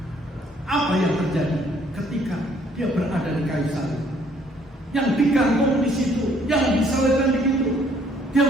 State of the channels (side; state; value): both; normal; correlation 0.63